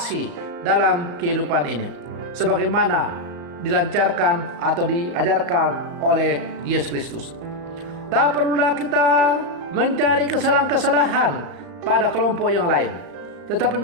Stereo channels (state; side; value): late; left; 35 ms